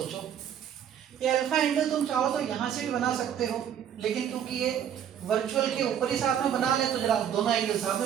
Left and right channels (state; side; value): quieter; left; 9.2 dB